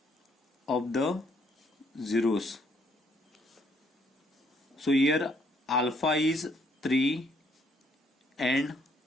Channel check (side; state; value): both; normal; correlation 0.68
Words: of the zeros. So here alpha is 3 and